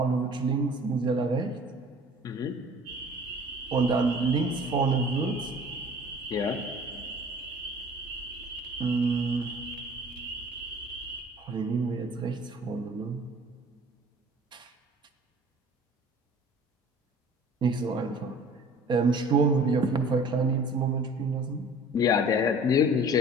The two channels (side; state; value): both; normal; correlation 0.47